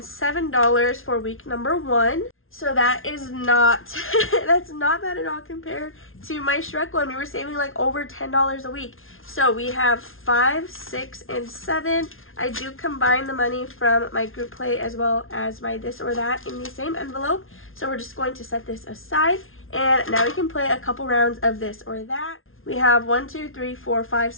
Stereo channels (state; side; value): late; right; 0.60 ms